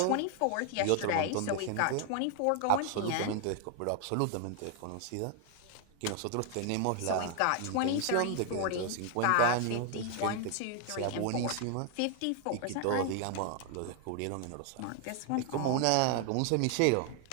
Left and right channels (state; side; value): different; both; correlation 0.00